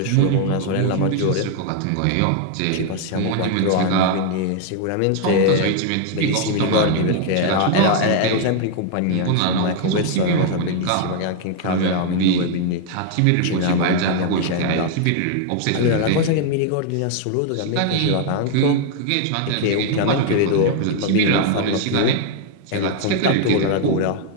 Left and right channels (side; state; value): both; different; correlation 0.00